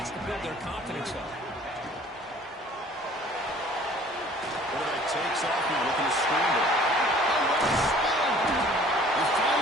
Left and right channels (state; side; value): normal; both; correlation 0.52